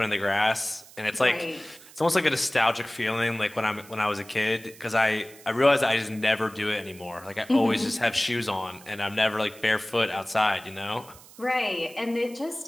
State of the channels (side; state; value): right; noise; hiss, 21 dB below the sound